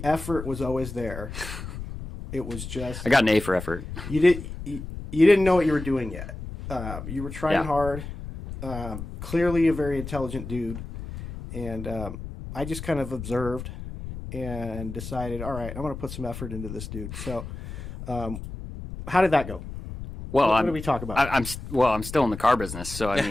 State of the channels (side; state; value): left; noise; rumble, 9 dB below the sound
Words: effort was always there. It was just I got an A for effort. you didn't know what you were doing yet. You were trying Yeah. hard. Clearly a very intelligent dude. And I just kind of observed and decided, all right, I'm going to put some effort into this dude. So how did that go? Well, What did we talk about? I'm still in the car business, so I